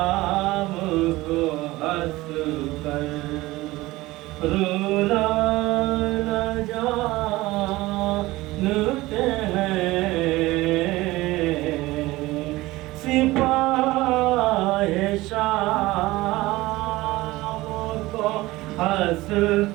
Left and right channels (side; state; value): left; quieter; 19.1 dB